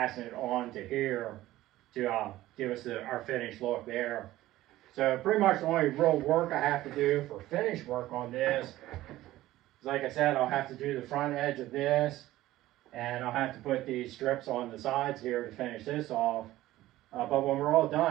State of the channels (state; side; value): quieter; left; 15.8 dB